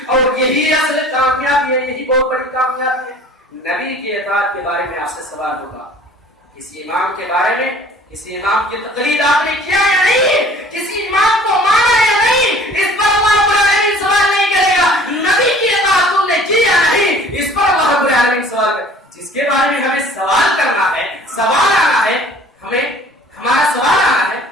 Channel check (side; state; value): both; normal; correlation 0.49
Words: اور یہی اصل کامیابی ہے, یہی بہت بڑی کامیابی ہے. نبی کی اطاعت کے بارے میں آپ سے سوال ہوگا, کسی امام کے بارے میں, کسی امام کی تقلید آپ نے کیا یا نہیں, کسی امام کو مانا یا نہیں, اس پر اللہ رب العالمین سوال نہیں کرے گا. نبی کی اطاعت تم نے کی یا نہیں, اس پر اللہ رب العالمین سوال کرے. جس کے بارے میں ہمیں سوال کرنا ہے, سوال آنا ہے, ہمارا سوال آنا ہے,